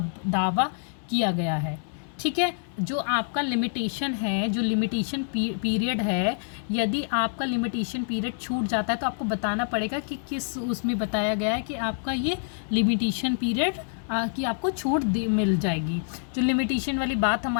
दावा किया गया है। ठीक है, जो आपका लिमिटेशन है, जो लिमिटेशन पीरियड है, यदि आपका लिमिटेशन पीरियड छूट जाता है तो आपको बताना पड़ेगा कि किस उसमें बताया गया है कि आपका ये लिमिटेशन पीरियड कि आपको छूट मिल जाएगी। जो लिमिटेशन वाली बात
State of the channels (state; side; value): silent; right; digital silence